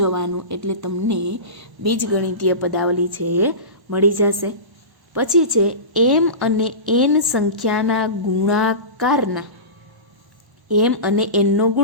એટલે તમને બીજગણિતીય પદાવલી છે એ મળી જશે. પછી છે એમ અને એન સંખ્યાના ગુણાકારના. એમ અને એનનો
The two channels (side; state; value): left; late; 1.0 ms